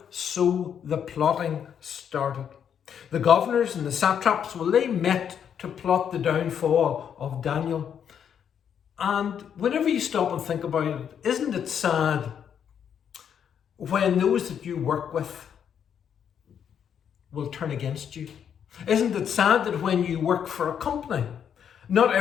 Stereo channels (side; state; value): right; quieter; 8.3 dB